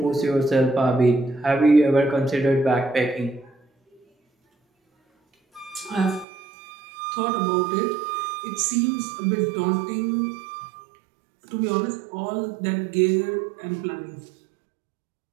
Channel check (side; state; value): left; drops out; at 6.2 s